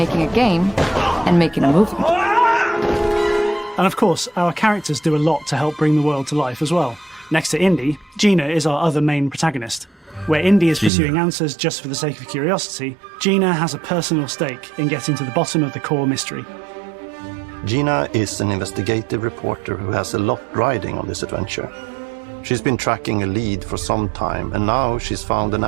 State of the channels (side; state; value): left; drops out; at 10.9 s